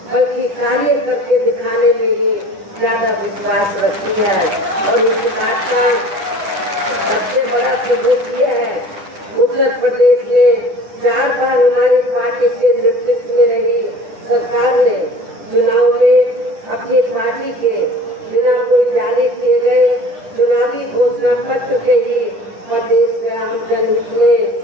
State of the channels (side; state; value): left; late; 9.9 ms